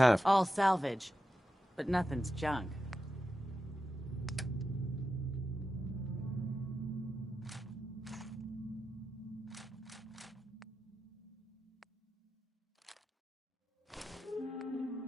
All salvage, but nothing's junk.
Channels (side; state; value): both; normal; correlation 0.90